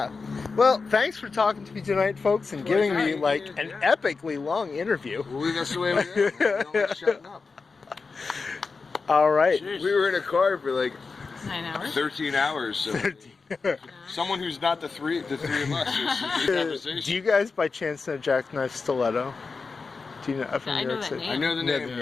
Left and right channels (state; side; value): quieter; right; 4.5 dB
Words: Well, thanks for talking to me tonight, folks, and giving me like an epically long interview. Well, that's the way we do. We don't shutting up. All right. We were in a car for like 9 hours. 13 hours. So someone who's not the three of us. Do you guys by chance know Jackknife Stiletto? Do you know from I New know York that City? name. I know the Know name. the